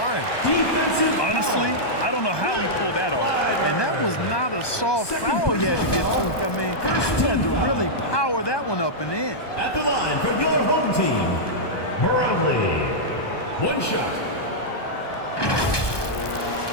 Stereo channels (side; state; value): right; late; 1.2 ms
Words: Honestly, I don't know how he pulled that off. And that was not a soft foul he had to get to. I mean, he had to really power that one up and in. At the line for your home team, Brownlee. One shot.